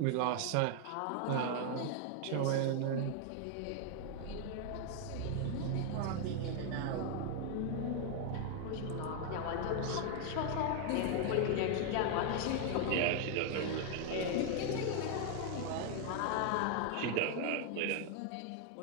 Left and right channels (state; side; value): different; both; correlation 0.00